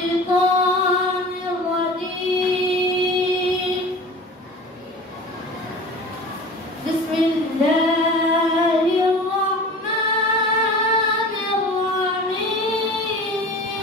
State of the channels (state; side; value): normal; both; correlation 0.38